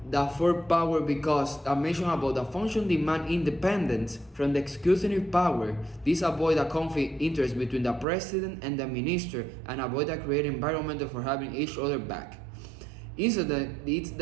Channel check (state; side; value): drops out; left; at 8.1 s